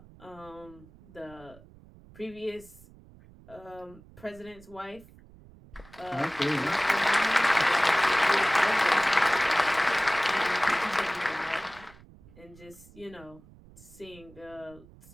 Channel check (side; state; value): right; noise; rumble, 23 dB below the sound